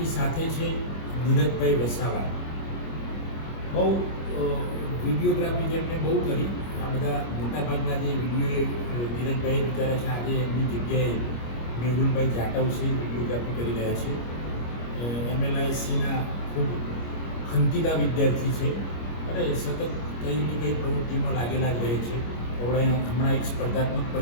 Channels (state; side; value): late; right; 25 ms